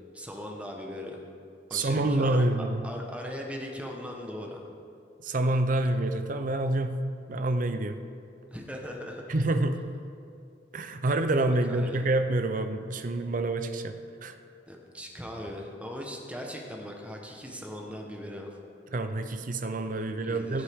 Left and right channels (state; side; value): normal; both; correlation 0.62